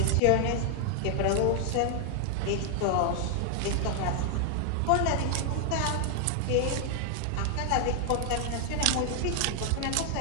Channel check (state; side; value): different; both; correlation 0.00